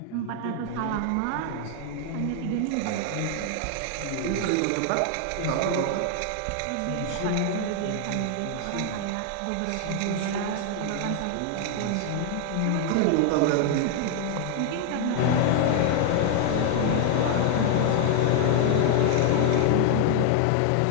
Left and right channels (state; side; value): different; both; correlation 0.00